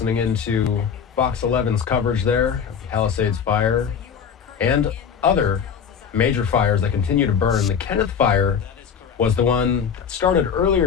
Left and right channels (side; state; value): right; quieter; 7.1 dB